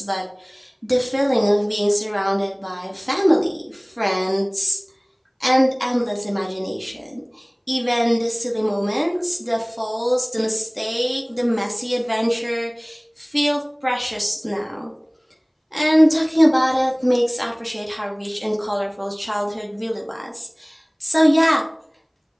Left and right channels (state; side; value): identical; both; correlation 1.00